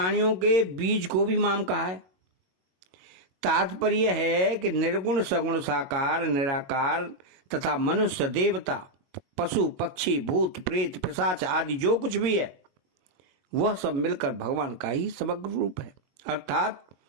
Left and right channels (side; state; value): left; late; 21 ms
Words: के बीज को भी माम कहा है। तात्पर्य है कि निर्गुण सगुण साकार निराकार तथा मनुष्य देवता पशु पक्षी भूत प्रेत पिशाच आदि जो कुछ भी है वह सब मिलकर भगवान का ही समग्र रूप है। अर्थात